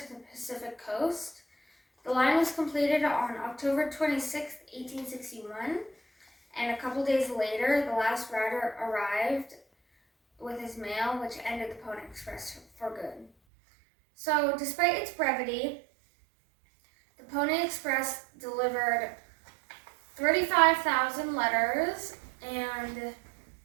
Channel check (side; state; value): left; drops out; at 13.3 s